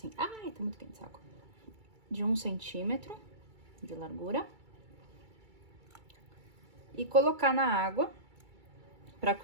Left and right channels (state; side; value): late; left; 2.3 ms